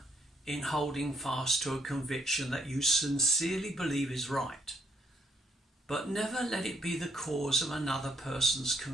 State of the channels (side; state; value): both; normal; correlation 0.70